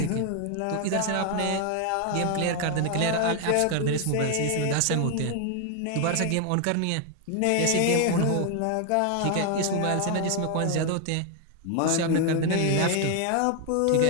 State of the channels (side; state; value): both; different; correlation 0.00